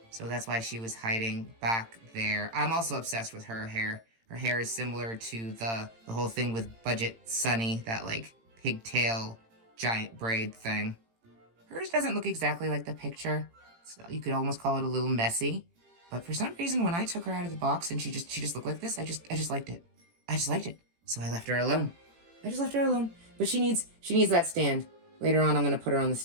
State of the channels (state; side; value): late; left; 18 ms